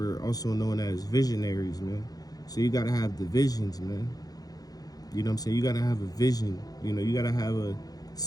also known as visionaries, man. So you got to have the visions, man. You know what I'm saying? You got to have a vision. You know, you got to have a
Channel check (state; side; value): late; right; 0.18 ms